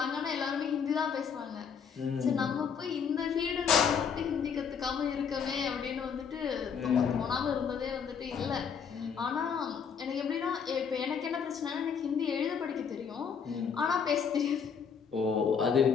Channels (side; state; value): right; quieter; 6.8 dB